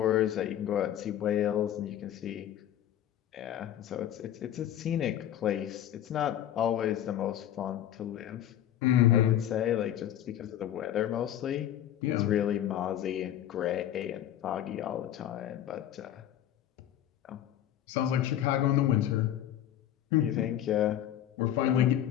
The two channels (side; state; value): right; quieter; 11.4 dB